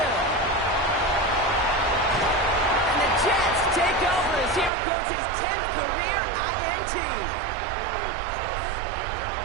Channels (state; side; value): drops out; left; at 4.7 s